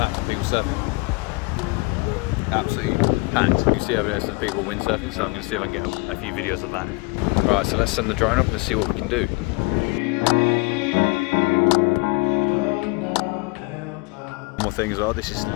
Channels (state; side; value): quieter; right; 27.5 dB